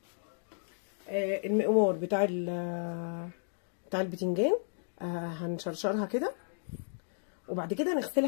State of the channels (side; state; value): right; silent; digital silence